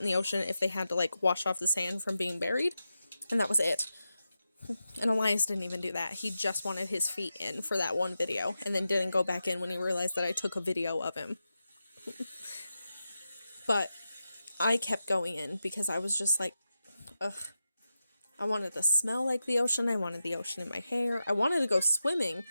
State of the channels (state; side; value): inverted; both; correlation -0.90